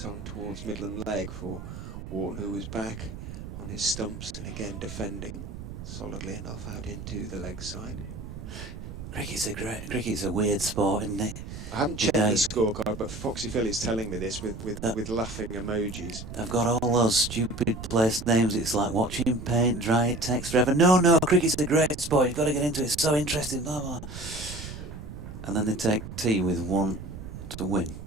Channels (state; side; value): noise; right; rumble, 10 dB below the sound